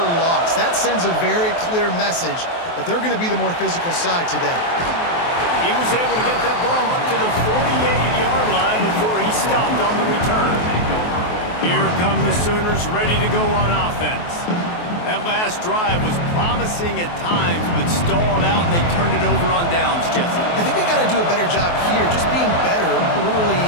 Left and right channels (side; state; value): right; late; 23 ms